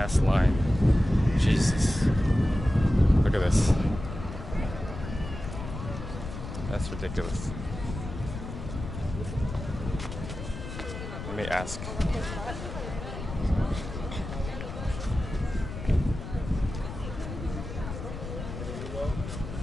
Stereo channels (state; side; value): noise; left; rumble, 8 dB below the sound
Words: line. Jesus. Look at this. That's ridiculous. Let me ask.